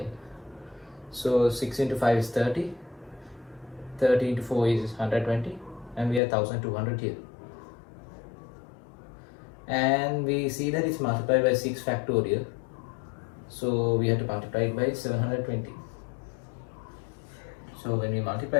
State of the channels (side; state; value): right; drops out; at 6.2 s